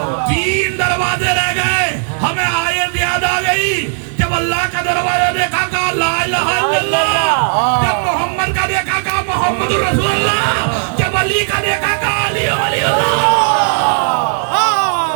3 دروازے رہ گئے. ہمیں آیت یاد آ گئی جب اللہ کا دروازہ دیکھا کہا لا الہ الا اللہ, جب محمد کا دیکھا کہا محمد رسول اللہ, جب علی کا دیکھا کہا علی ولی اللہ.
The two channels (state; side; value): silent; left; digital silence